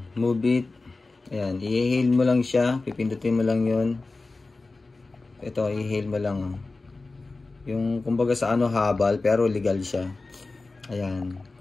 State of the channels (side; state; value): right; quieter; 3.5 dB